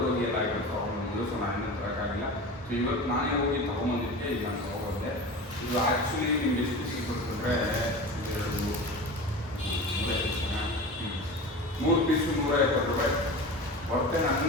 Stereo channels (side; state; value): both; normal; correlation 0.31